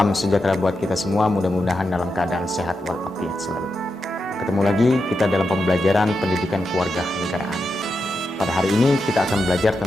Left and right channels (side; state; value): both; normal; correlation 0.87